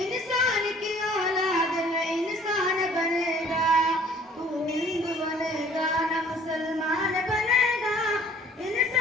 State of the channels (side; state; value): both; normal; correlation 0.54